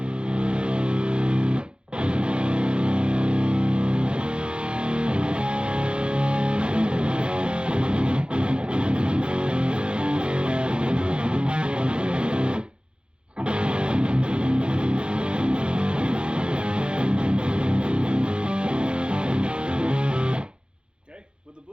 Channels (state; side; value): late; left; 0.053 ms